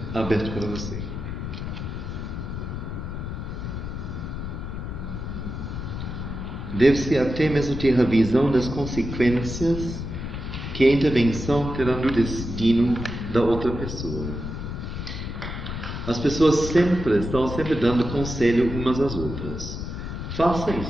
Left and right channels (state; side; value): noise; left; rumble, 6 dB below the sound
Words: aberto para você. Deve-se até mesmo ter a visão das consequências que a intervenção terá no destino da outra pessoa. As pessoas estão sempre dando conselho umas às outras. Faça